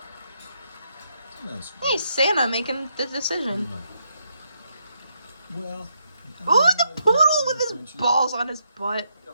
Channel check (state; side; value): inverted; both; correlation -0.79